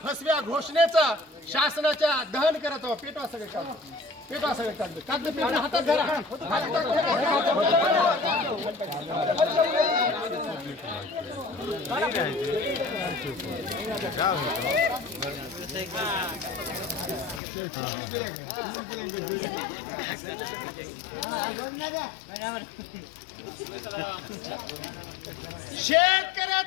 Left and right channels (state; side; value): drops out; right; at 17.4 s